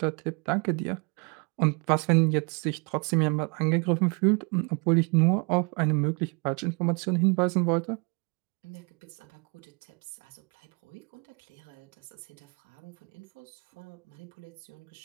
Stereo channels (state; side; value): quieter; left; 33.5 dB